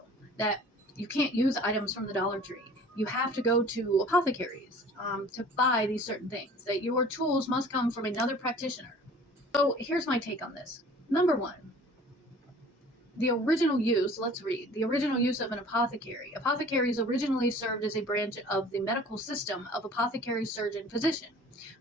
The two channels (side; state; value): both; normal; correlation 0.47